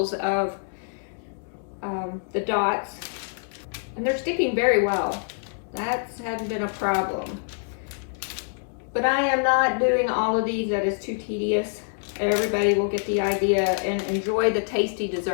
of the dots. And they're sticking very well. That hasn't been a problem. But I am not doing all of these. That is too tedious. Everybody will get the idea and enjoy the tasty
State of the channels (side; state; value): right; silent; digital silence